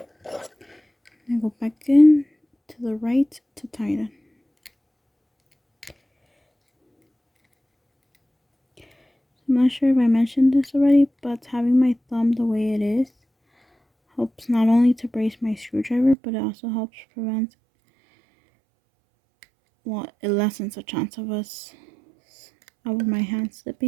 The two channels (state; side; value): drops out; left; at 16.2 s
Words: And I go back in to the right to tighten. I'm not sure if I mentioned this already, but having my thumb the way it is helps not only to brace my screwdriver, but it also helps prevent, well, it lessens the chance of my hand